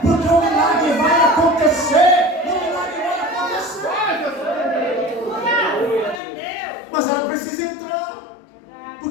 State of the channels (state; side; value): drops out; right; at 6.2 s